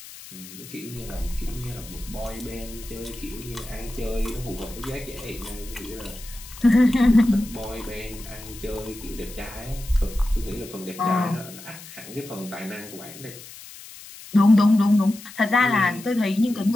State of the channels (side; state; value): left; noise; hiss, 16 dB below the sound